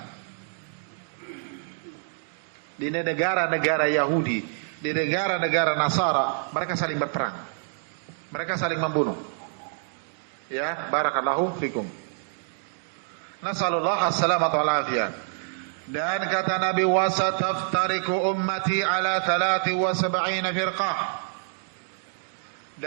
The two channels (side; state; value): left; silent; digital silence